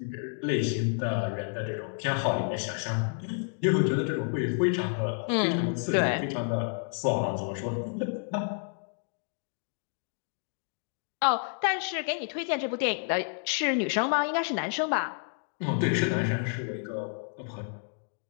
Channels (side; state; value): right; silent; 58 dB below the other